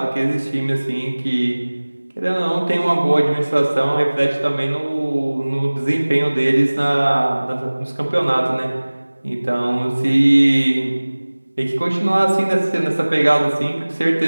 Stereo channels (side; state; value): both; inverted; correlation -1.00